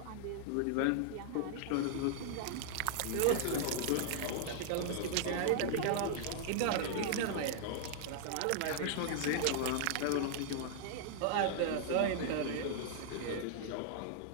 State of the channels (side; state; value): both; different; correlation -0.01